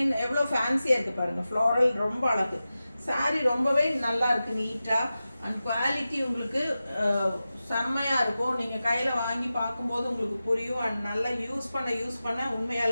எவ்வளோ ஃபேன்சியாக இருக்குது பாருங்கள், ஃப்ளோரல் ரொம்ப அழகு. சாரீ ரொம்பவே நல்லா இருக்குது, நீட்டாக. அண்ட் குவாலிட்டி உங்களுக்கு செம்மையாக இருக்கும். நீங்கள் கையில் வாங்கி பார்க்கும்போது உங்களுக்கு புரியும். அண்ட் நல்லா யூஸ் பண்ண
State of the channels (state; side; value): inverted; both; correlation -0.94